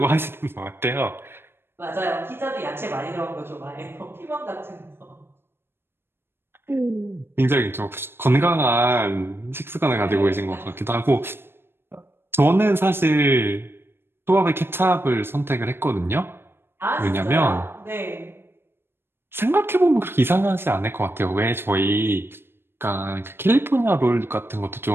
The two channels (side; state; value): left; late; 0.11 ms